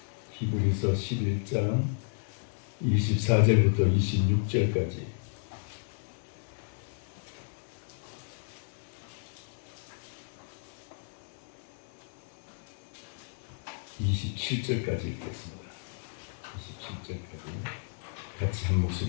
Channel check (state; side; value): silent; right; 56 dB below the other